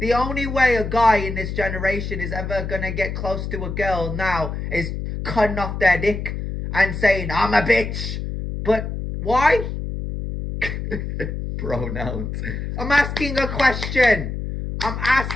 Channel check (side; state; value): left; noise; hum, 5 dB below the sound